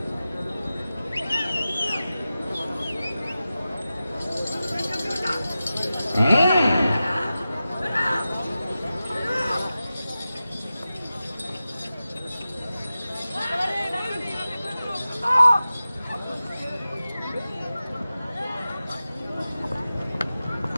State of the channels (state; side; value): inverted; both; correlation -0.94